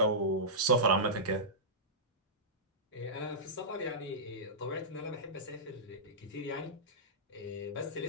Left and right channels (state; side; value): normal; both; correlation -0.16